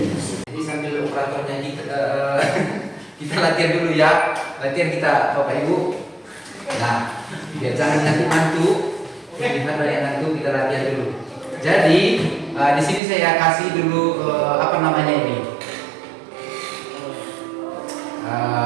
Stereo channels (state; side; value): drops out; left; at 13.0 s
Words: Jadi sambil operatornya kita latihan dulu ya, latihan kita Bapak Ibu. Nah, biar jangan nanti mantu, gimana yang nanti kita latihan dulu. Jadi di sini saya kasih dulu apa namanya ini,